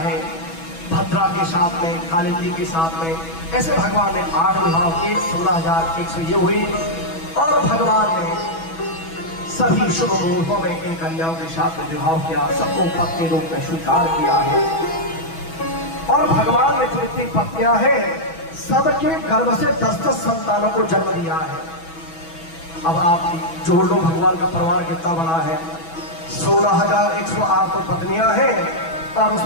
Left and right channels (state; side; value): late; right; 6.1 ms